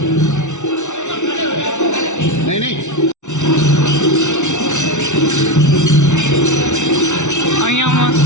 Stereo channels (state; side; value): late; right; 0.84 ms